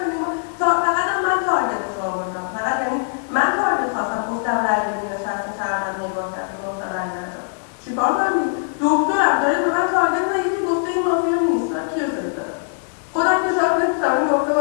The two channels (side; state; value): right; silent; 65 dB below the other